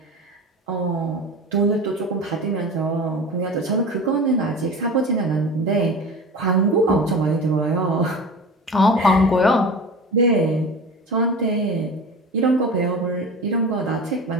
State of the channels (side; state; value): both; normal; correlation 0.33